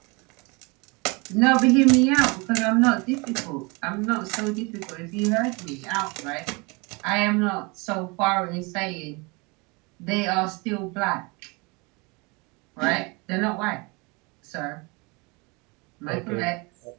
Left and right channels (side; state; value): left; quieter; 28.1 dB